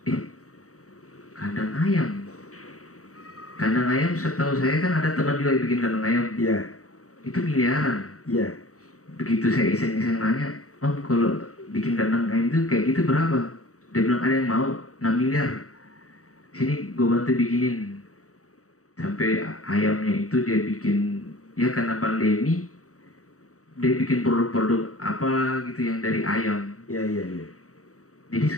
kandang ayam. Kandang ayam setahu saya kan ada teman juga yang bikin kandang ayam. Iya. Itu miliaran. Iya. Begitu saya iseng-iseng nanya, Om kalau bikin kandang ayam itu kayak gitu berapa? Dia bilang ada yang mau 6 miliar. Sini gue bantu bikinin. Sampai ayamnya itu dia bikin, ya karena pandemi dia bikin produk-produk apa gitu yang dari ayam. Iya. Jadi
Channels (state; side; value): late; right; 0.65 ms